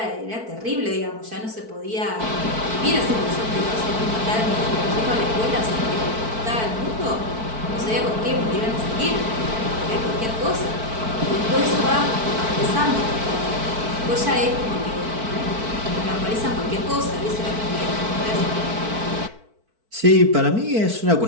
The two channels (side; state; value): left; late; 4.5 ms